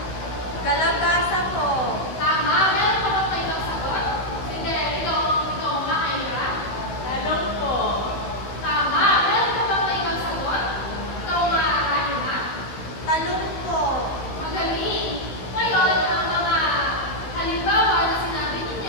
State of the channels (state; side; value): late; right; 16 ms